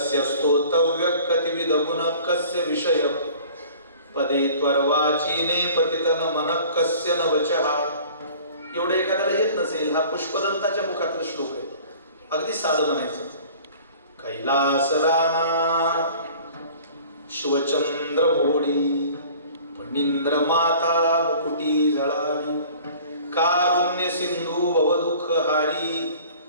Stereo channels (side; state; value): both; inverted; correlation -0.47